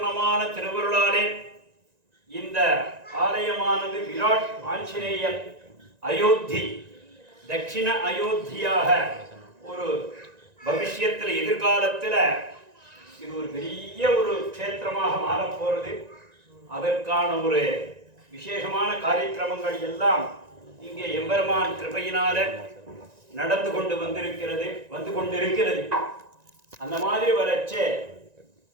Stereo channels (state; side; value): late; left; 1.9 ms